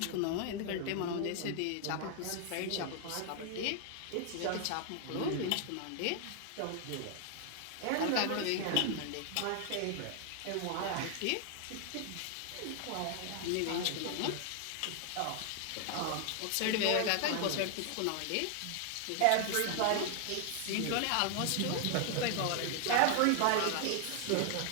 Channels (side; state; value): both; different; correlation 0.00